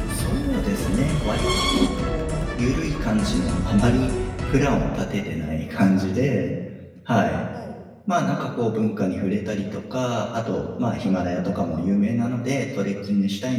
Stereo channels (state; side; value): identical; both; correlation 1.00